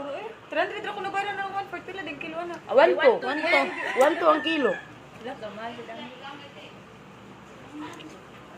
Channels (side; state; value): both; identical; correlation 1.00